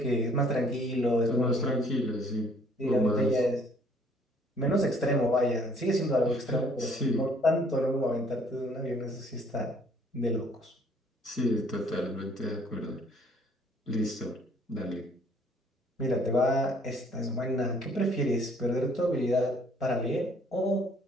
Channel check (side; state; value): both; normal; correlation 0.60